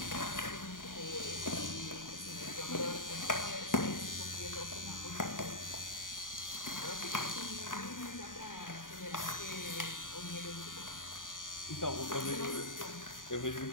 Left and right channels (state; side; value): late; right; 0.89 ms